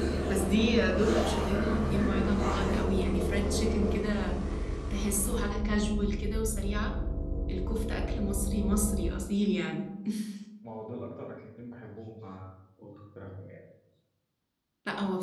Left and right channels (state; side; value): identical; both; correlation 1.00